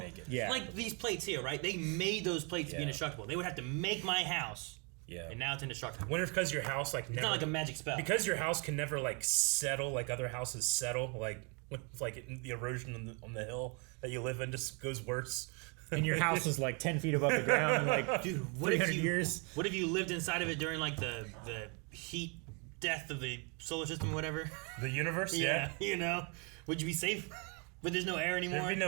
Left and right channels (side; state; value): left; quieter; 34.1 dB